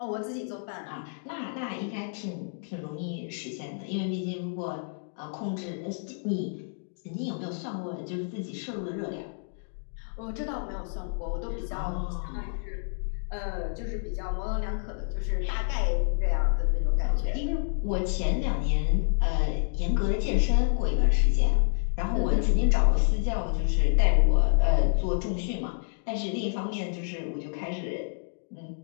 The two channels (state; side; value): silent; right; digital silence